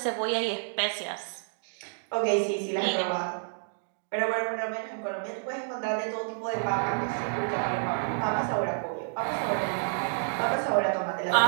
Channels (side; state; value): left; silent; digital silence